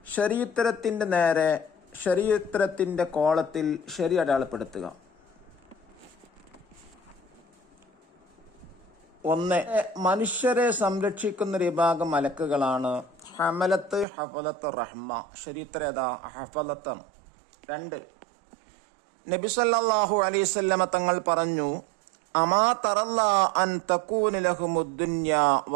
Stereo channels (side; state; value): left; drops out; at 14.1 s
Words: ശരിയുത്തരത്തിൻ്റെ നേരെ ശരിയുത്തരത്തിൻ്റെ കോളത്തിൽ ശരി അടയാളപ്പെടുത്തുക. 1. മനുഷ്യരെ സംരക്ഷിക്കുന്ന ഒരു വിഭാഗം മലക്കുകളാണ് ഹമലത്ത് ഹഫലത്ത് റഹ്മ. ശരിയുത്തരം ഏതാ? ഹഫലത്ത്. 2. നബി സല്ലല്ലാഹു അലൈഹി വസല്ലമ തങ്ങൾ പറഞ്ഞു, അമാ തറല്ല അൻ തകൂന ലഹുമുദ്ദുന്യ